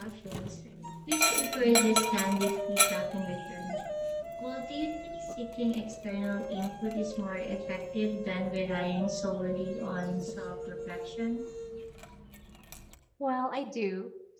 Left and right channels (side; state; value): both; identical; correlation 1.00